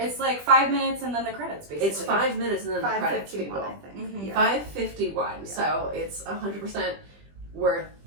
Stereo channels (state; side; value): late; left; 20 ms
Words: like 5 minutes and then the credits, basically. It's 5 minutes and then the credits. 5:51, I think. Mm-hmm. Yeah. 5:51. Yeah. So it's 100% worth